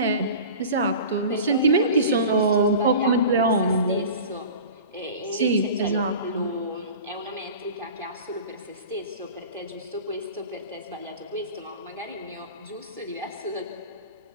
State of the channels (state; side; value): inverted; both; correlation -0.37